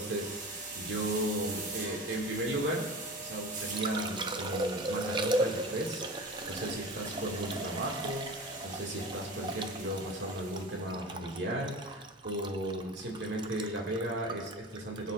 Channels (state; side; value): normal; both; correlation 0.34